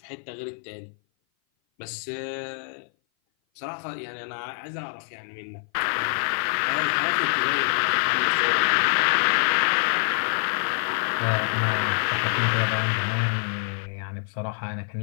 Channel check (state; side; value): silent; right; 57 dB below the other